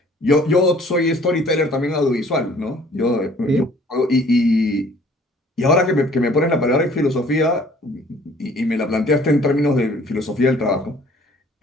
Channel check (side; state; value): both; normal; correlation 0.55